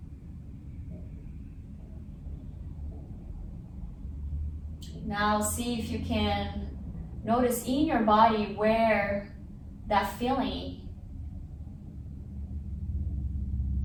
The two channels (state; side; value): identical; both; correlation 1.00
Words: Now see if you can notice in your body where that feeling